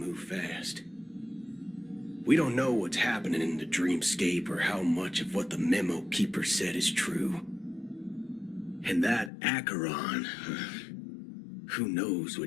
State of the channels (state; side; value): drops out; right; at 9.3 s